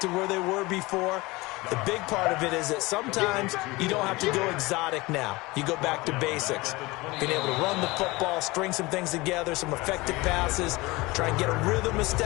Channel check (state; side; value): quieter; right; 22.3 dB